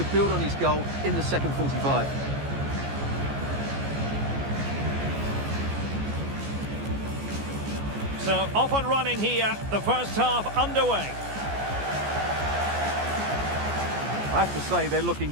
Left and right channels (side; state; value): left; late; 14 ms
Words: build on his goal in the second 45. So, off and running here, the first half underway. I have to say, they're looking